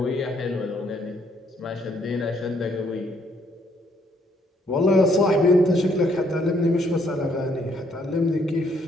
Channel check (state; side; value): normal; both; correlation 0.69